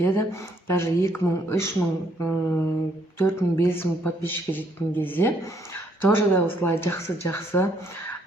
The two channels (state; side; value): normal; both; correlation 0.69